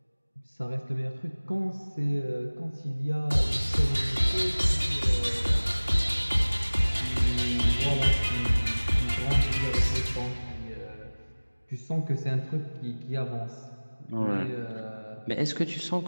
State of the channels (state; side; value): inverted; both; correlation -1.00